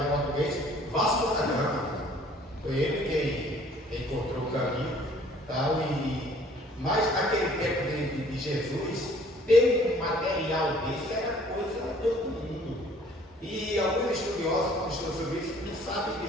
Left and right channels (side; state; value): both; normal; correlation 0.56